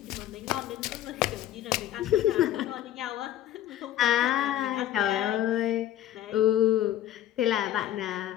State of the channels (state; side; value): quieter; right; 12.4 dB